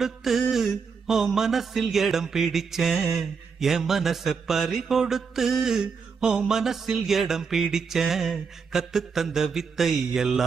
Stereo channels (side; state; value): left; quieter; 5.6 dB